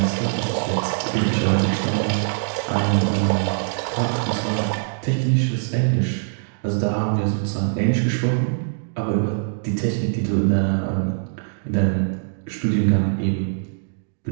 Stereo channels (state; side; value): silent; left; digital silence